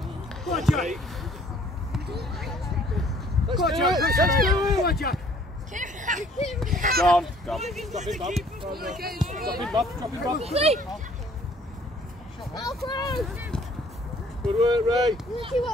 Go on, Jack. Let's do it. Let's do it. Go on, Jack. Go on. Go on. Drop it, Bob. Drop it, Bob. Drop it, Bob. Good work, Ray.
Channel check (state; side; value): normal; both; correlation 0.58